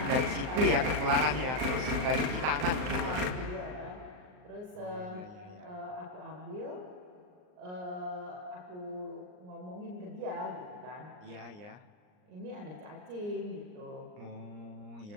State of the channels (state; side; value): late; left; 39 ms